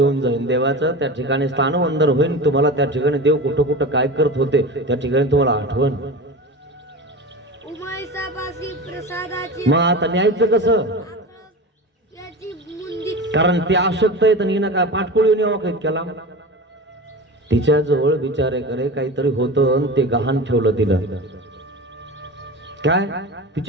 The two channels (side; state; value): both; normal; correlation 0.30